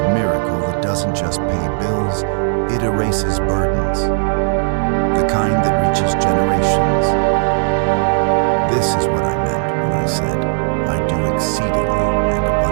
miracle that doesn't just pay bills, it erases burdens. The kind that reaches generations. This is what I meant when I said, I do exceedingly and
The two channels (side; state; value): left; silent; digital silence